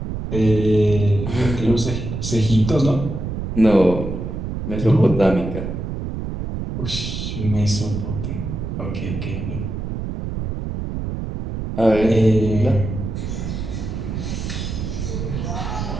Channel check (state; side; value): noise; right; rumble, 5 dB below the sound